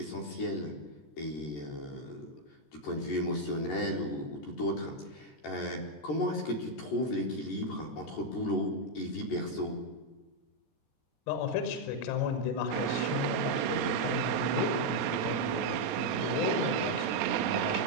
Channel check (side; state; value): right; late; 13 ms